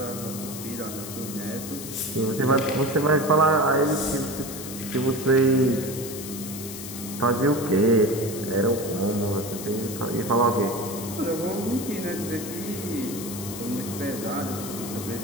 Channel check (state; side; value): noise; left; hiss, 10 dB below the sound